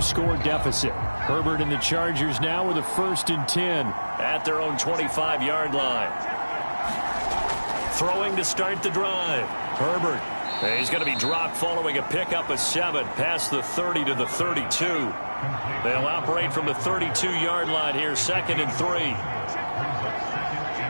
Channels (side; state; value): both; inverted; correlation -1.00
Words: deficit. Herbert and the Chargers now with a 1st and 10 at their own 25-yard line. Throwing to start the drive. Herbert. He's going to be dropped following a pickup of 7 past the 30 to the 32. They'll operate from the 32-yard line here, 2nd and 3.